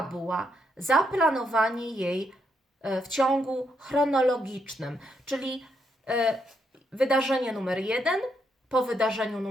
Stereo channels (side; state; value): both; normal; correlation 0.78